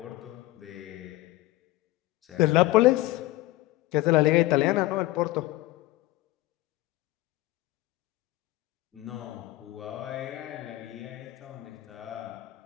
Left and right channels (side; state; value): right; quieter; 18.1 dB